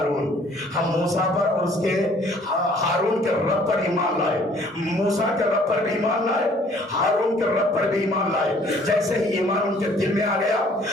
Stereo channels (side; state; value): both; normal; correlation 0.58